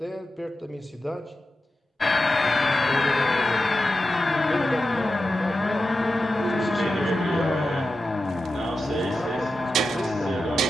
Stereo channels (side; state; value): both; normal; correlation 0.91